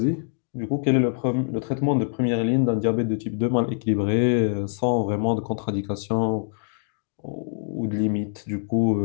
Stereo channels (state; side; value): silent; right; digital silence